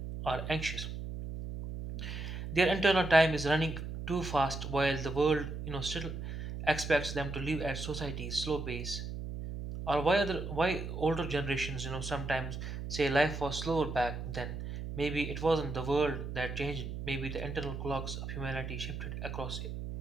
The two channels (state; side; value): noise; right; hum, 6 dB below the sound